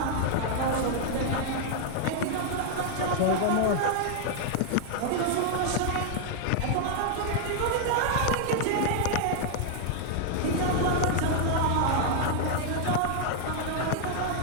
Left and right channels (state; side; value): different; both; correlation 0.00